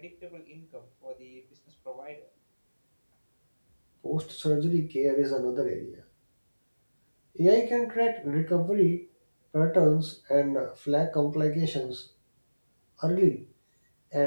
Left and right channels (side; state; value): both; inverted; correlation -1.00